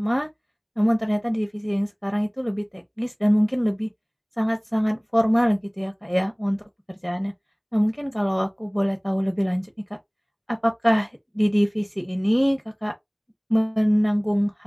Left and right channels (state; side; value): identical; both; correlation 1.00